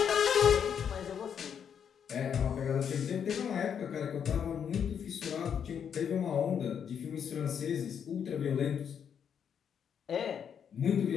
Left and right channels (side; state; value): right; quieter; 7.9 dB